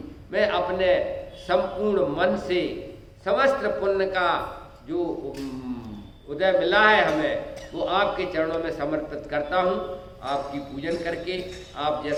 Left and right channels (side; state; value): both; identical; correlation 1.00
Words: मैं अपने संपूर्ण मन से समस्त पुण्य का जो उदय मिला है हमें, वो आपके चरणों में समर्पित करता हूँ। आपकी पूजन करके आप